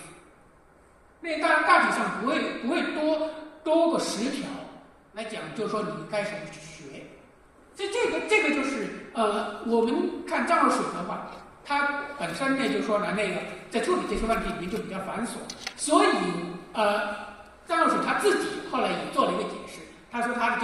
那当然大体上不会多过10条来讲，就是说你该怎么去学。所以这个就是我们看张若水的话，他本身呢就是说呢，那个在处理这些问题里面就比较繁琐，所以张若水他自己后来也做了一个解释，他说他的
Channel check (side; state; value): both; identical; correlation 1.00